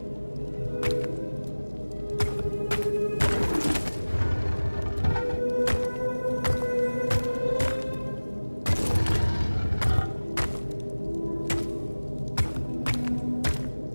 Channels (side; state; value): both; inverted; correlation -1.00